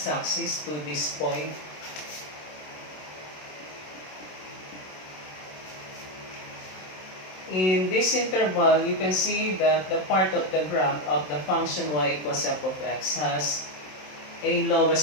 to this point. In this interval, you can see that the part of the graph of the function y equals f of x has a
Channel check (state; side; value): late; right; 27 ms